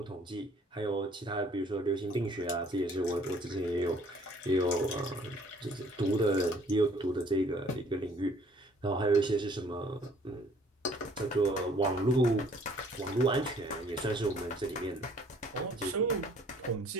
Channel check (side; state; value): both; normal; correlation 0.58